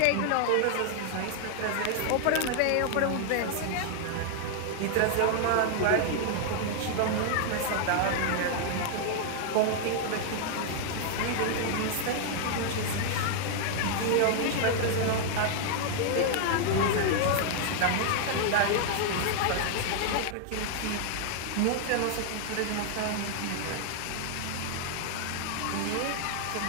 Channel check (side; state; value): both; different; correlation 0.00